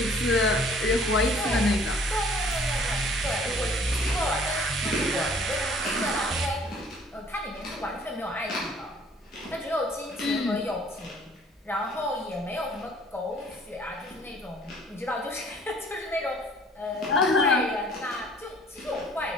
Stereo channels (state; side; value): normal; both; correlation 0.55